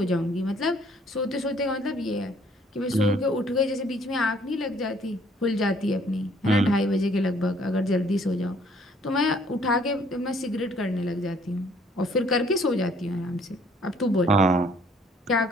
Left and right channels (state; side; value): normal; both; correlation 0.61